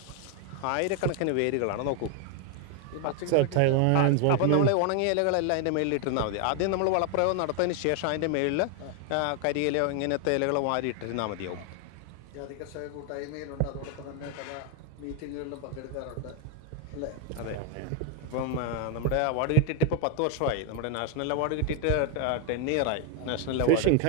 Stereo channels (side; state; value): both; different; correlation 0.01